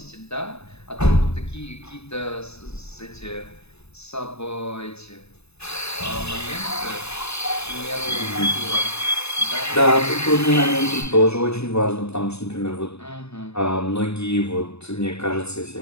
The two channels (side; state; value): right; late; 0.80 ms